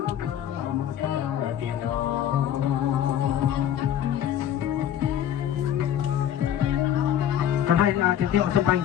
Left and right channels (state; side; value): quieter; right; 10.4 dB